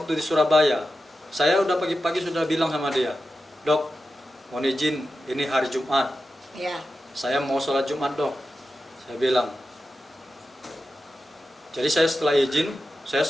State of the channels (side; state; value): both; normal; correlation 0.92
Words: di Surabaya. Saya udah pagi-pagi sudah bilang sama dia, "Dok, mohon izin, ini hari Jumat. Ya. Saya mau sholat Jumat, Dok." Saya bilang. Jadi saya setelah izin, saya